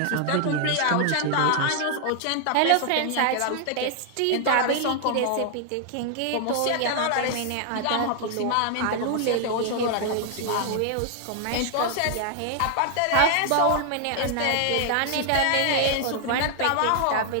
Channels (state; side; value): different; both; correlation 0.00